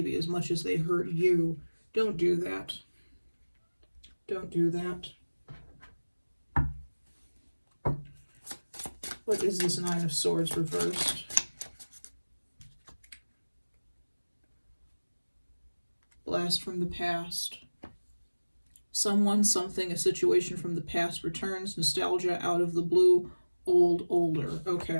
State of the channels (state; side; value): inverted; both; correlation -1.00